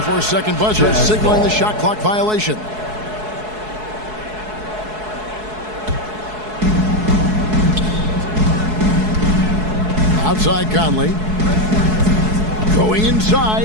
buzzer, signaling the shot clock violation. Outside Conley. Going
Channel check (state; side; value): late; left; 4.7 ms